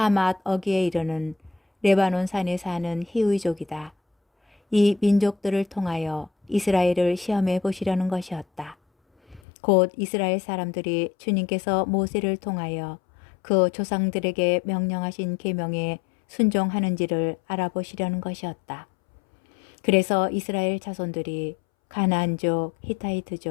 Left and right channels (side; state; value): right; drops out; at 9.4 s